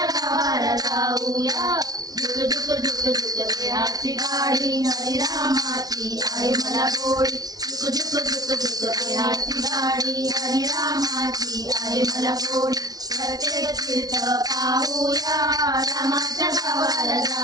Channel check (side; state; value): left; late; 0.19 ms